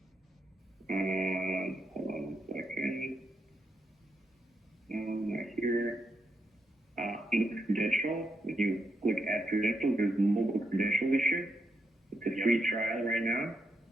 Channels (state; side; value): normal; both; correlation 0.82